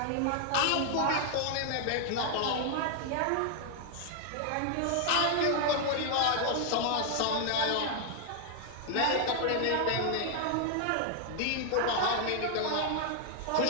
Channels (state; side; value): different; both; correlation 0.00